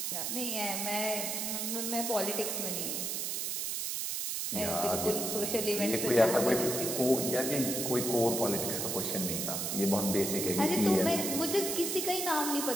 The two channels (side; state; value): right; noise; hiss, 1 dB below the sound